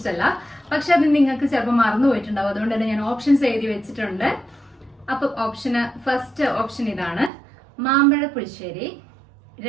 പക്ഷെ അത് നിങ്ങൾക്ക് ചിലപ്പോൾ മറന്നു പോയിട്ടുണ്ടാവും. അതുകൊണ്ട് തന്നെ ഞാൻ ഓപ്ഷൻസ് എഴുതി വെച്ചിട്ടുണ്ട്. അപ്പൊ ഫസ്റ്റ് ഓപ്ഷൻ ഇതാണ്, മാമ്പഴ പുളിശ്ശേരി.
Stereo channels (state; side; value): drops out; left; at 7.3 s